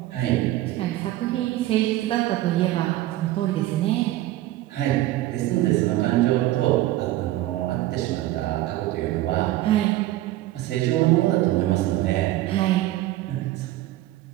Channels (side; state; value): left; quieter; 15.6 dB